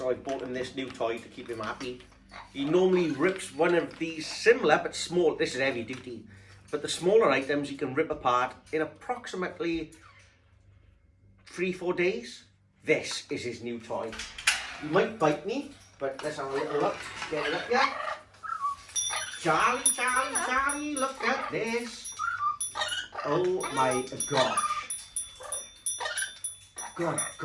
I bought him this new toy to keep him happy. He normally rips one of these similar but small. This is heavy duty, but the smaller items he can rip apart in approximately 3-4 days. This is his new toy. He might bite me, but let's have a little look. Get it up here. Charlie, Charlie, Charlie, look at this. Oh my gosh.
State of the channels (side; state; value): both; identical; correlation 1.00